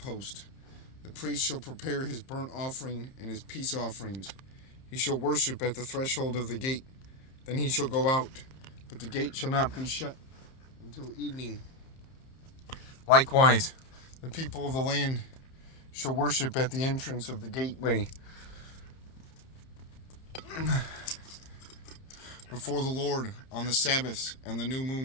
The priest shall prepare his burnt offering and his peace offerings. He shall worship at the threshold of the gate. Then he shall go out, but the gate shall not be shut until evening. Likewise, the people of the land shall worship at the entrance of the gateway before the Lord on the Sabbaths and the new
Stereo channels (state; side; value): late; right; 30 ms